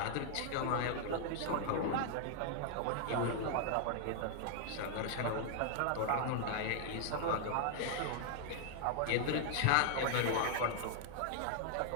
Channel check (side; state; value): both; different; correlation 0.00